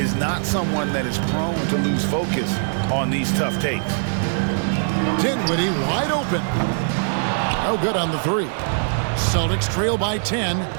not someone that is prone to lose focus on these tough takes. Dinwiddie wide open. No good on the 3. Celtics trail by 10.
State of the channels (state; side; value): silent; left; 64 dB below the other